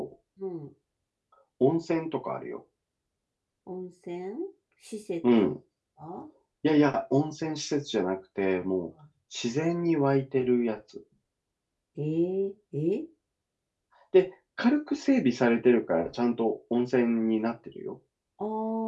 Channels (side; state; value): both; identical; correlation 1.00